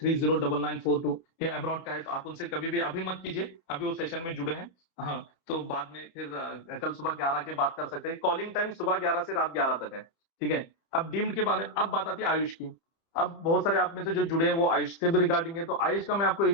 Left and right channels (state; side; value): late; right; 30 ms